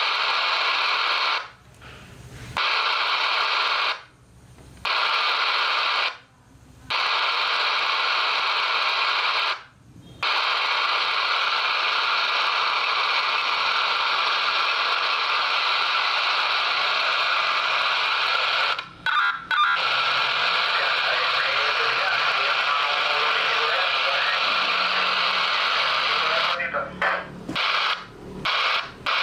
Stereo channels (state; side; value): identical; both; correlation 1.00